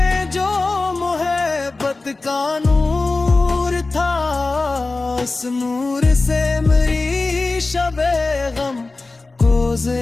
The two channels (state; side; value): quieter; right; 3.4 dB